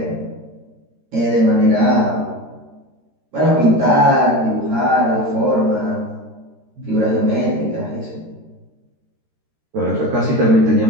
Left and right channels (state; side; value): late; left; 13 ms